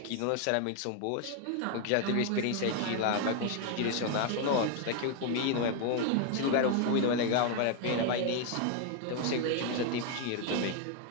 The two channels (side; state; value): both; different; correlation 0.00